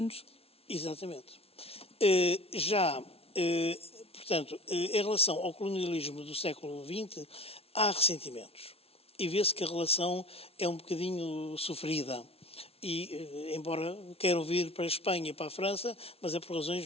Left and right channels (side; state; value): right; late; 0.29 ms